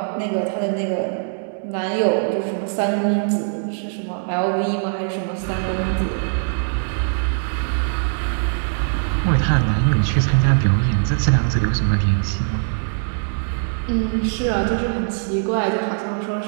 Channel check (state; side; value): silent; left; 65 dB below the other